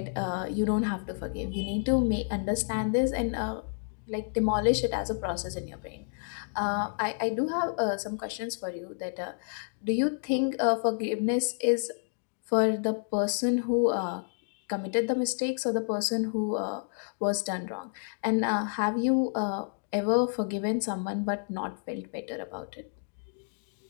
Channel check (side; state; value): right; silent; digital silence